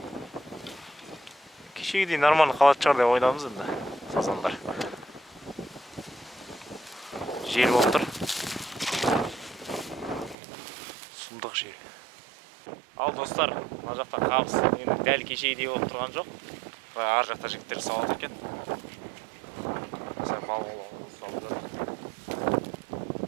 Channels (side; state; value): left; drops out; at 10.4 s